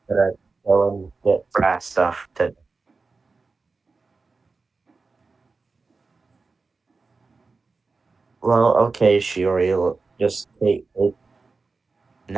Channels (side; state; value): left; quieter; 4.1 dB